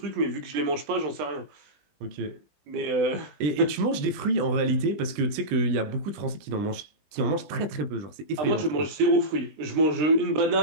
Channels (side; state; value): left; late; 20 ms